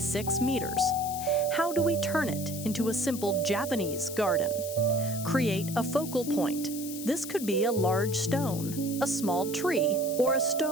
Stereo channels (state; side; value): noise; left; hiss, 10 dB below the sound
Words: meters. How do we turn it into a simple Japanese garden? Create a focal point. This could be a large stone, a small tree, or a